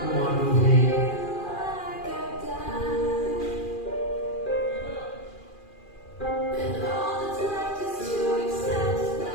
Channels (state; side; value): late; right; 2.4 ms